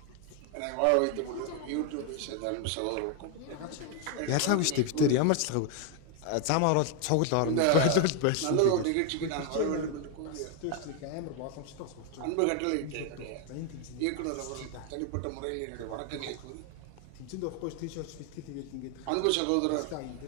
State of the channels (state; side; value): different; both; correlation 0.01